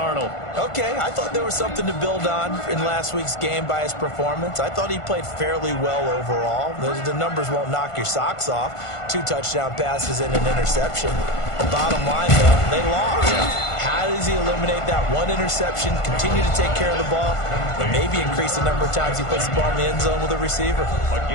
Okay, I thought there was something to build on in last week's game by his performance. I thought he played fairly well overall. The numbers won't knock your socks off. 2 touchdown passes and an interception. Bottom line, though, they lost. How does he eliminate that one interception, continue to take care of the ball, and maybe increase the number of times he puts the ball in the end zone with a receiver? A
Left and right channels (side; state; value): right; late; 1.5 ms